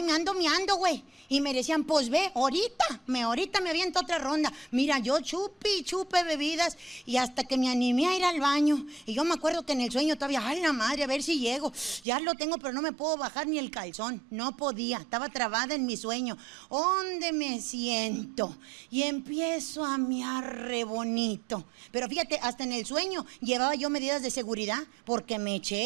me ando miando, güey. Y me decían: pues ve, ahorita me aviento otra ronda. Mira, yo chupe bebidas y hasta que me animé a ir al baño. Y yo me acuerdo que en el sueño todavía, ay, la madre, a ver si llego. Ya lo tengo, pero no me puedo bajar ni el calzón. No podía, estaba trabada en mi sueño. ¿Dónde me siento? Y empiezo a miar re bonito. Pero fíjate, hasta en el sueño llevaba yo medidas de seguridad porque me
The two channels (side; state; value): left; drops out; at 12.1 s